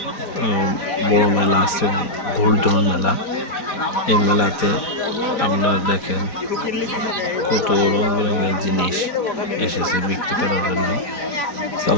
বড় মেলা আছে, গোল্ডন মেলা। এই মেলাতে আপনারা দেখেন কত রং বেরঙের জিনিস এসেছে বিক্রি করার জন্য।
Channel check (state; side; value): late; right; 5.0 ms